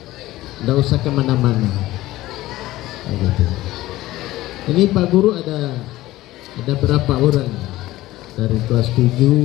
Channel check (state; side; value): quieter; right; 16.7 dB